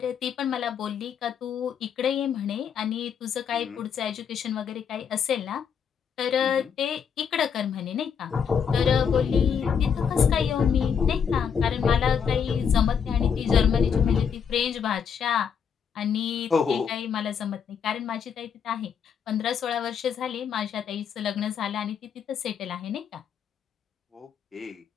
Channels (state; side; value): quieter; right; 7.2 dB